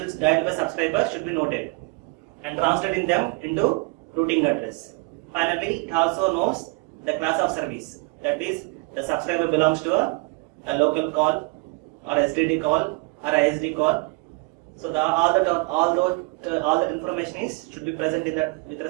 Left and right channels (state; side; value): quieter; left; 28.1 dB